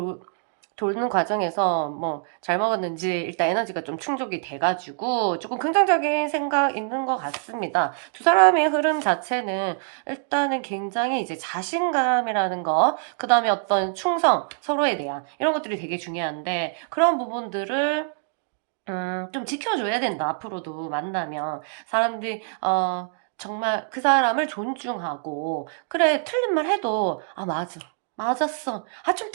도는 과정에서 뭐 잘 먹었는지 일단 에너지가 좀 충족이 돼가지고 조금 긍정적인 생각 있는 것 같습니다. 두 사람의 흐름 자체는 일단은 굉장히 이제 자신감이라는 거, 그 다음에 어떤 충성, 서로에 대한 이런 것들이 되게 중요한데 그런 부분들을 좀 지켜줘야 된다. 앞으로도 만나면 사람들이 정말 그 사람을 존중하고 그래 틀린 말 해도 아 맞아 맞았어 아 좀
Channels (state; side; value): silent; left; digital silence